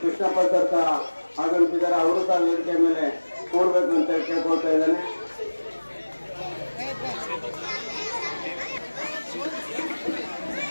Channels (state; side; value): inverted; both; correlation -1.00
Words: ಕೃಷ್ಣಪ್ಪ ಸರ್ ಸಹ ಆಗಮಿಸಿದ್ದಾರೆ, ಅವರು ಸಹ ವೇದಿಕೆ ಮೇಲೆ ಕೂರ್ಬೇಕು ಅಂತ ಕೇಳ್ಕೊಳ್ತಾ ಇದ್ದಾನೆ.